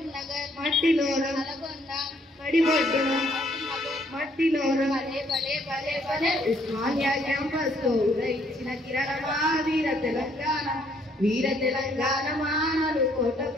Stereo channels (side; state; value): both; normal; correlation 0.67